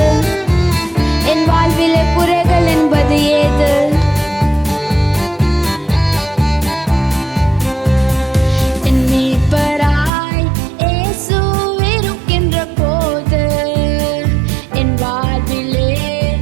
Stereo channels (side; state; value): left; drops out; at 10.1 s